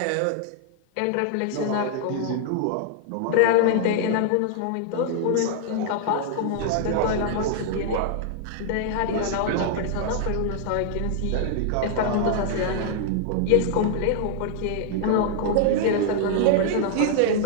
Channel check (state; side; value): different; both; correlation 0.00